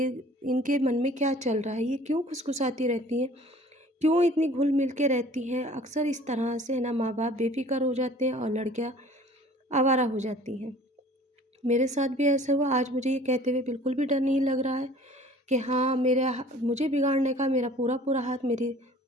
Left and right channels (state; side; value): normal; both; correlation 0.49